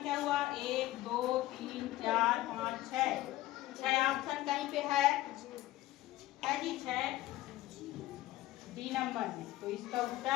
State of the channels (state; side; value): quieter; right; 16.1 dB